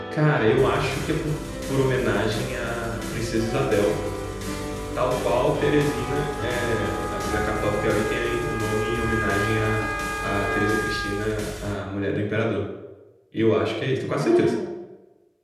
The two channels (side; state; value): both; identical; correlation 1.00